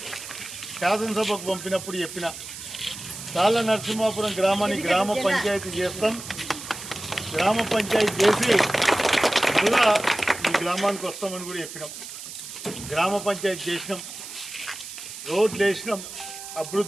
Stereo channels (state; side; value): noise; right; hiss, 11 dB below the sound